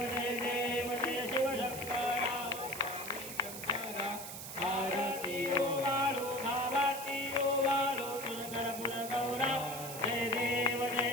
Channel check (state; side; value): noise; right; hiss, 9 dB below the sound